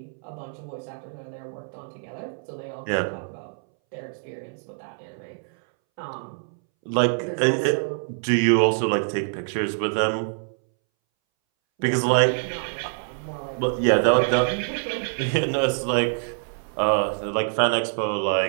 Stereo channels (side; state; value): left; silent; 62 dB below the other